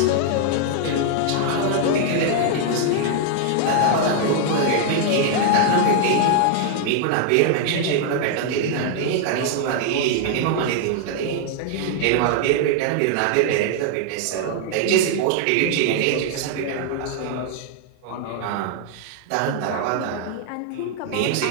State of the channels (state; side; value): different; both; correlation 0.00